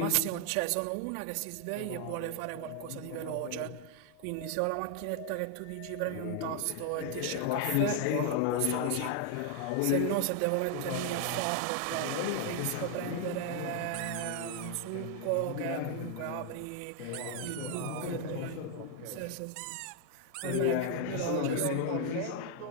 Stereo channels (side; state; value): both; different; correlation 0.00